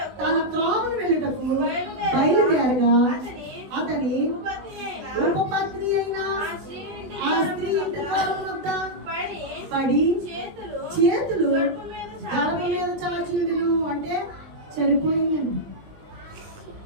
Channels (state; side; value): late; left; 20 ms